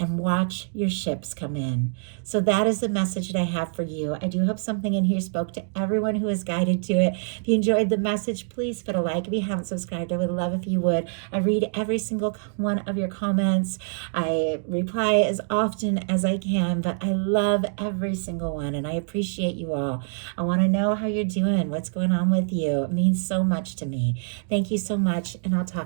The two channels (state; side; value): silent; left; digital silence